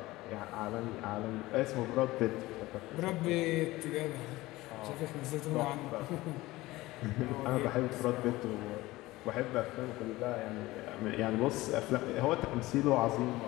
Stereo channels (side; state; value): right; quieter; 18.8 dB